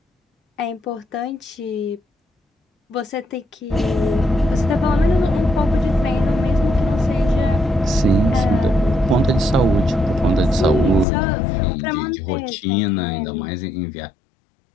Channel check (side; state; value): right; drops out; at 11.1 s